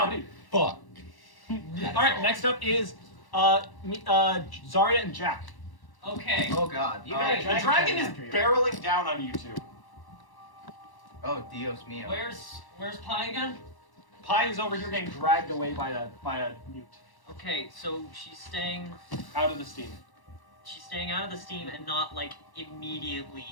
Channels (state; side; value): late; right; 1.1 ms